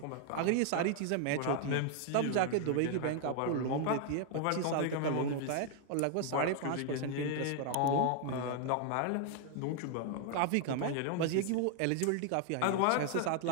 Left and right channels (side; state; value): both; different; correlation 0.00